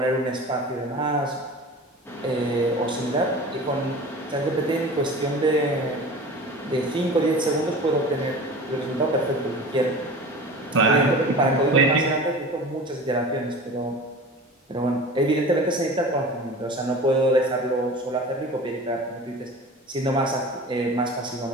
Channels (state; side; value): normal; both; correlation 0.36